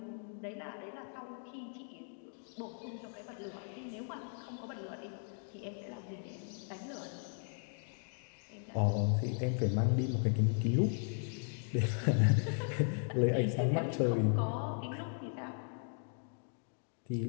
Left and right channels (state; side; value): silent; right; 53 dB below the other